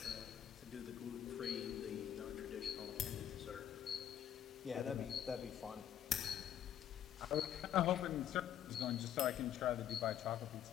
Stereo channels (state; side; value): quieter; right; 10.4 dB